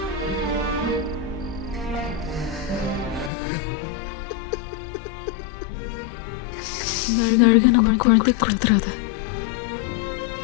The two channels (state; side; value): drops out; right; at 3.3 s